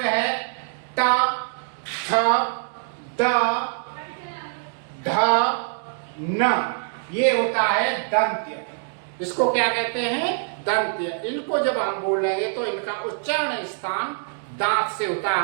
है ट, थ, द, ध, न, ये होता है दंत्य। इसको क्या कहते हैं? दंत्य। इनको जब हम बोलेंगे तो इनका उच्चारण स्थान दांत से होता है।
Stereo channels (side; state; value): left; silent; digital silence